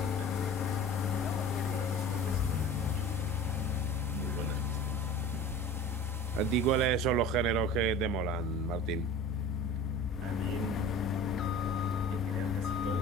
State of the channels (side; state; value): both; normal; correlation 0.39